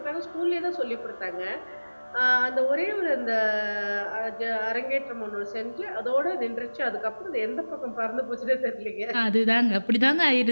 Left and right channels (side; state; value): both; inverted; correlation -1.00